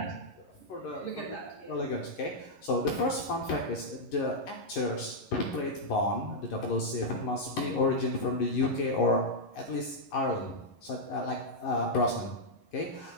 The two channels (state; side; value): late; right; 11 ms